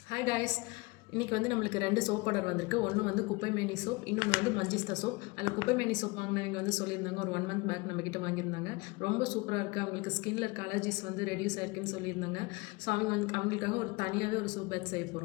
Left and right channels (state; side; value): quieter; right; 25.3 dB